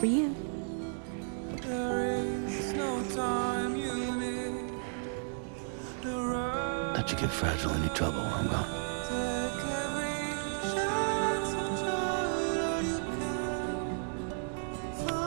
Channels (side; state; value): left; silent; digital silence